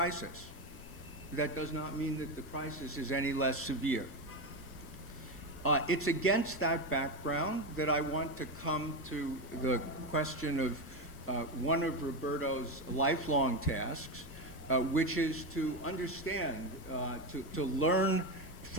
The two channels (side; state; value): left; noise; rumble, 16 dB below the sound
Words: That does not mean that the crisis is any less severe. It's against that background that I want to come to the question one of Roberto's lifelong tasks, which is to understand, to learn